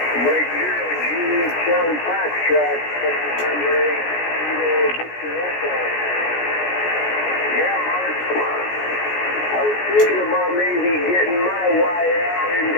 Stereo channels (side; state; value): right; late; 17 ms